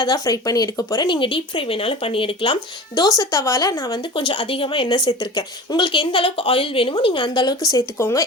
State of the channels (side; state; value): both; normal; correlation 0.36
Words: தான் ஃப்ரை பண்ணி எடுக்க போறேன். நீங்க டீப் ஃப்ரை வேணாலும் பண்ணி எடுக்கலாம். தோசை தவால நான் வந்து கொஞ்சம் அதிகமாக எண்ணெய் சேர்த்துருக்கேன். உங்களுக்கு எந்த அளவுக்கு ஆயில் வேணுமோ நீங்க அந்த அளவுக்கு சேர்த்துக்கோங்க.